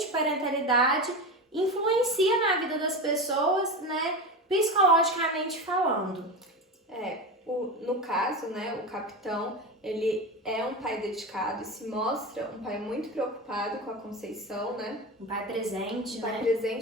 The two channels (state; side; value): normal; both; correlation 0.23